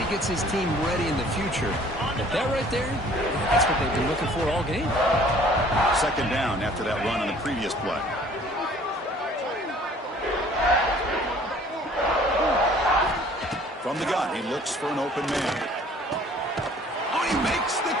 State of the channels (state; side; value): normal; both; correlation 0.54